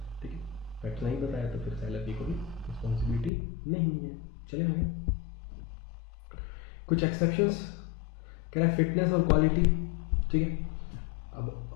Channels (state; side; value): drops out; right; at 3.3 s